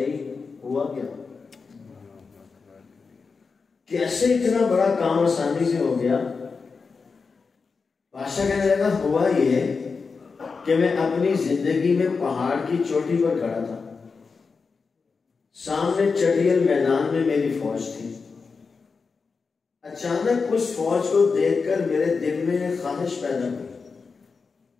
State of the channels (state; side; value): quieter; right; 4.8 dB